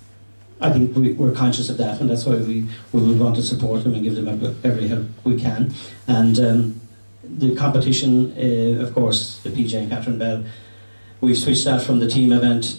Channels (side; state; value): both; inverted; correlation -1.00